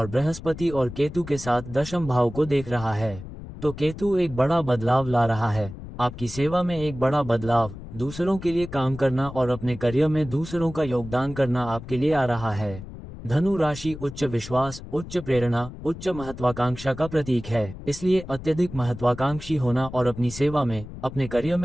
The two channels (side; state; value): left; noise; rumble, 13 dB below the sound